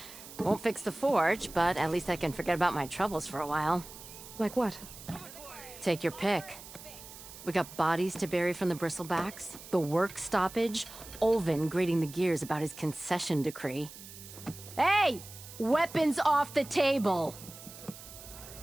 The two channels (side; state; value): right; noise; hiss, 15 dB below the sound